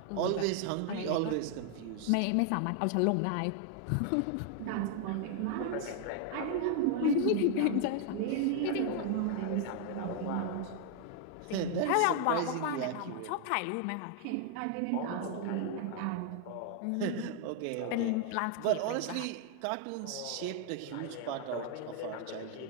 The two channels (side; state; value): both; different; correlation 0.00